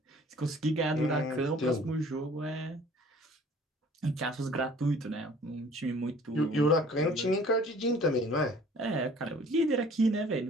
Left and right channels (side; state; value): both; normal; correlation 0.52